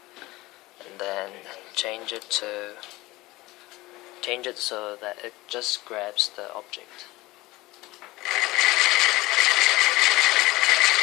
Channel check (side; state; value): right; quieter; 19.7 dB